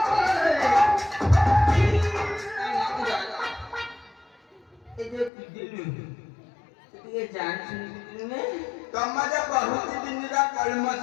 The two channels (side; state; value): right; drops out; at 5.3 s